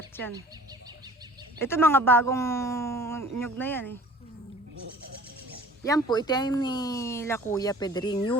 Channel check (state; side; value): normal; both; correlation 0.48